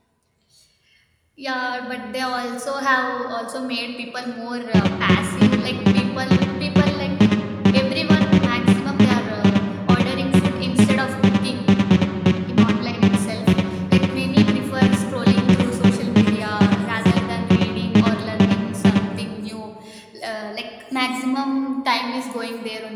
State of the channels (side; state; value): both; identical; correlation 1.00